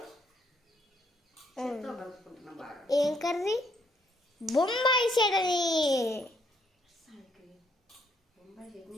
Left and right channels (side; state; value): both; normal; correlation 0.70